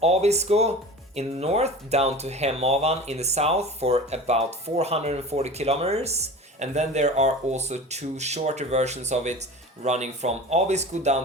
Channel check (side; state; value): both; normal; correlation 0.35